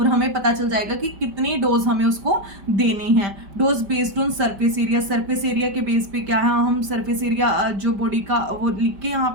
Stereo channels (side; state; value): left; late; 5.1 ms